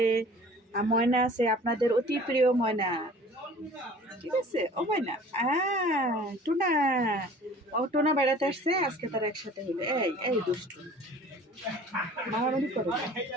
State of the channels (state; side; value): normal; both; correlation 0.47